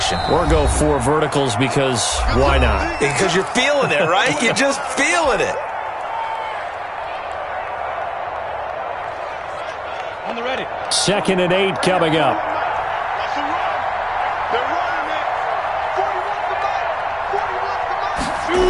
Or go 4 verticals because why not? Because you're feeling it, right? You're just feeling it. On the ready. 2nd and 8 coming up. That's a run. They're running it.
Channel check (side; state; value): both; identical; correlation 1.00